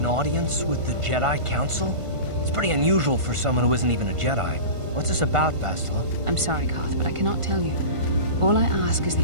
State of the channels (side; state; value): left; late; 1.5 ms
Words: audience with the Jedi Council? It's pretty unusual for someone who isn't even a Jedi. What's this about, Bastila? I'm sorry, Carth, but I cannot tell you. All I ask is